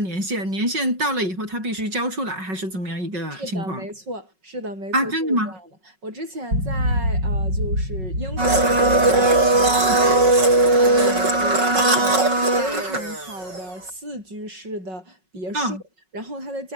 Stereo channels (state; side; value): late; left; 5.4 ms